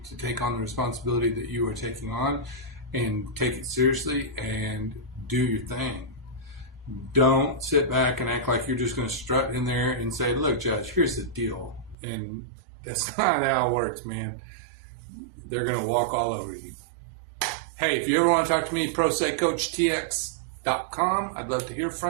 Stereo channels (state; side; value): drops out; left; at 12.0 s